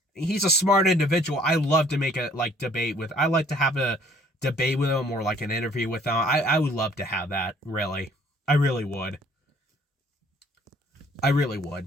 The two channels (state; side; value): normal; both; correlation 0.58